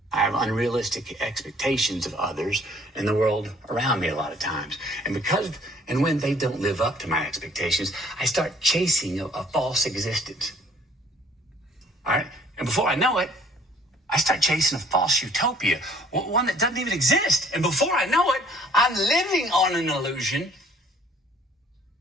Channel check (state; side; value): normal; both; correlation 0.58